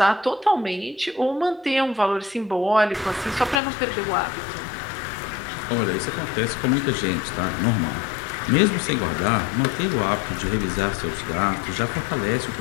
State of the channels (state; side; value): drops out; right; at 3.6 s